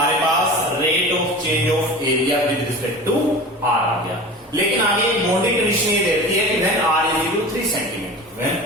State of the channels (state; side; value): normal; both; correlation 0.35